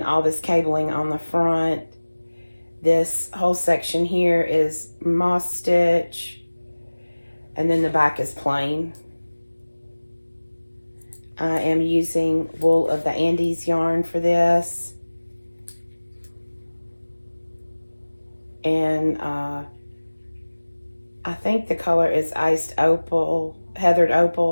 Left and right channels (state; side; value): inverted; both; correlation -1.00